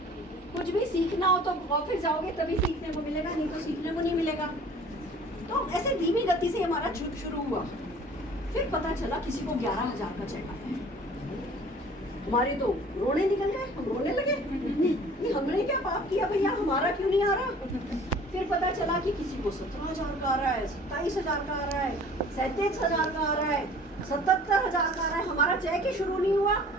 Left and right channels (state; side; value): normal; both; correlation 0.48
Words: कुछ भी सीखना हो तो ऑफिस जाओगे तभी सीखने को मिलेगा, नहीं तो सीखने को नहीं मिलेगा। तो ऐसे धीमी गति से हमारा शुरू हुआ। फिर पता चला किसी को 11,000 का चेक आया। हमारे तो रोने निकल गए, हम रोने लगे कि हमने क्या पाप किया भैया, हमारा क्यों नहीं आ रहा। फिर पता चला कि किसी को 17,000 का आ रहा है, 27,000 का आ रहा है, 37,000 का आ रहा है, 77,000 का आ रहा है। हमारा चेक ही शुरू नहीं हुआ